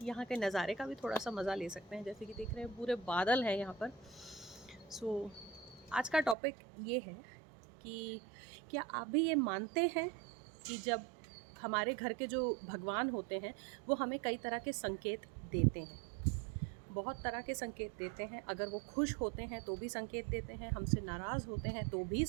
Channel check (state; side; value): drops out; left; at 6.4 s